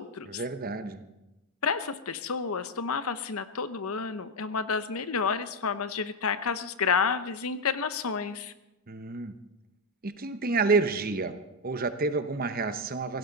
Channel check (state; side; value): normal; both; correlation 0.05